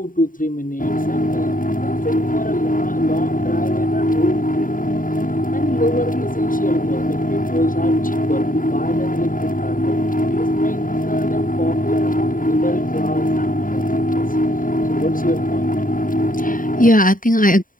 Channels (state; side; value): late; right; 0.39 ms